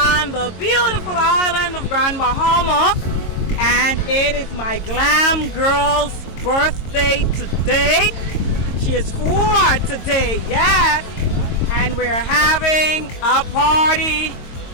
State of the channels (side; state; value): right; late; 22 ms